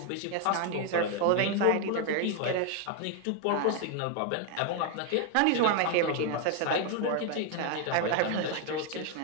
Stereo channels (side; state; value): both; different; correlation 0.01